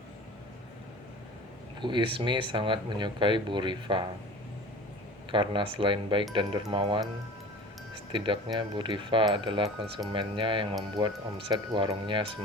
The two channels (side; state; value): both; normal; correlation 0.40